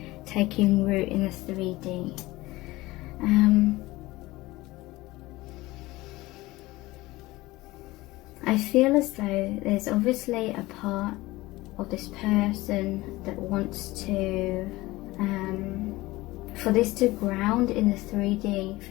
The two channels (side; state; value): right; quieter; 19.5 dB